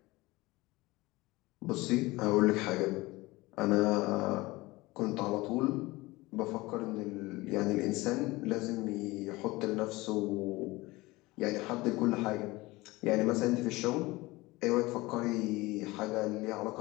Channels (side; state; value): right; quieter; 21.0 dB